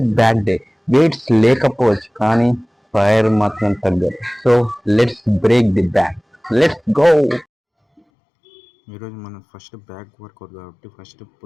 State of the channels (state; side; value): drops out; right; at 8.0 s